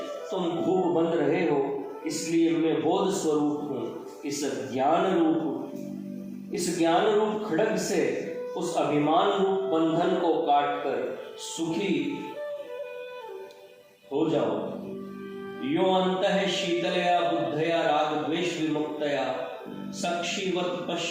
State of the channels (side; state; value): both; identical; correlation 1.00